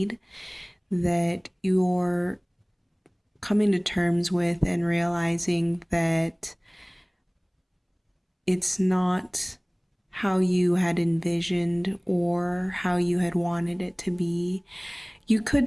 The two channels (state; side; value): identical; both; correlation 1.00